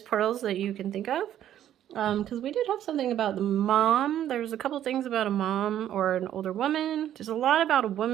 pearls that you can think of. Because we did have something about the mom. There's a couple things about a mom or an older woman. There's a lot about a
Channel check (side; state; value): left; quieter; 11.2 dB